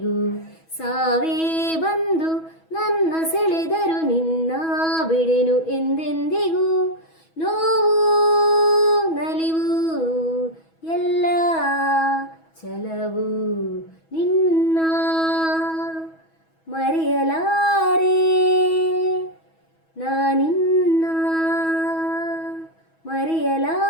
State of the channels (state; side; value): late; right; 6.2 ms